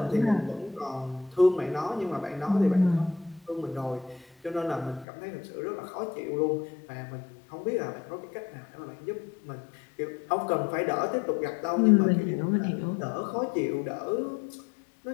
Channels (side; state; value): right; drops out; at 5.1 s